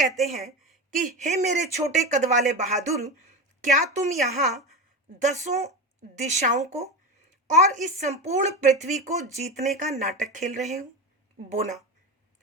हैं कि हे मेरे छोटे कद वाले बहादुर, क्या तुम यहाँ 10 दिशाओं को और इस संपूर्ण पृथ्वी को जीतने का नाटक खेल रहे हो? बोना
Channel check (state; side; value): normal; both; correlation 0.20